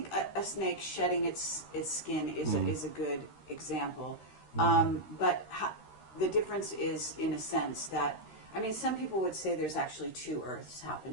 a snake shedding its skin is a good example. But the difference is, in a sense, that, I mean, some people would say there's actually two Earths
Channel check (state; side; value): late; right; 13 ms